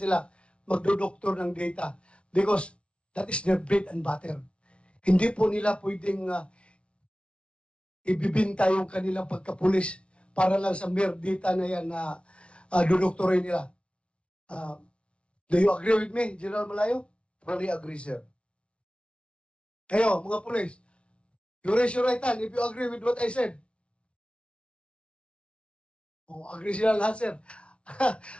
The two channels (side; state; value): right; late; 0.060 ms